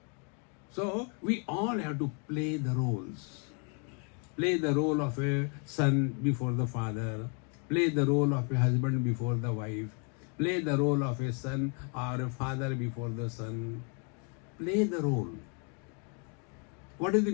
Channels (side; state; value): right; quieter; 38.0 dB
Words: So we all have to play the roles. Play the role of a son before the father. Play the role of a husband before the wife. Play the role of a son or a father before the son. Play the role. What is the